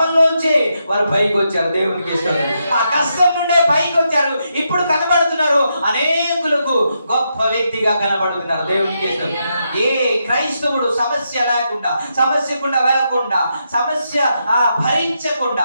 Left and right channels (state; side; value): inverted; both; correlation -0.82